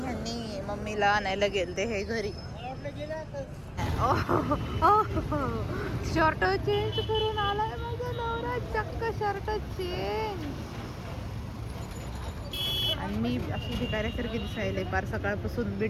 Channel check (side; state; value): both; identical; correlation 1.00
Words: मम्मीला आणायला गेलते हे घरी. शर्ट चेंज करून आलाय माझा नवरा. चक्क शर्ट चेंज. आणि मी अशी भिकाऱ्यासारखी दिसायला पार सकाळपासून